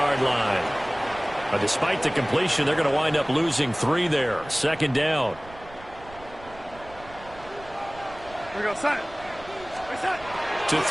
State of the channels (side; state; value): right; noise; rumble, 19 dB below the sound